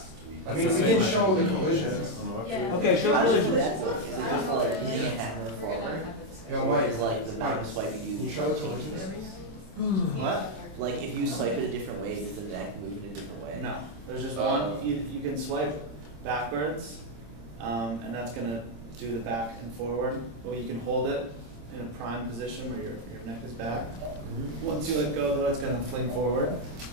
week. I mean, we can show the collisions. Yeah. Okay, show Collisions. the That's collisions. what- I don't know what it is. We're gonna have a discussion. Yo, Mike, It's like the Mike, non-swiping can you you. show the collisions? What? Like if you swipe it a different way, does the neck move in a different way? No, there's just Oh. one, you can swipe backwards, and that's gonna do the back and forward, or you can hold it in a prime position where your neck is back. Once you let go though, it's gonna fling forward,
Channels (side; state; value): left; late; 26 ms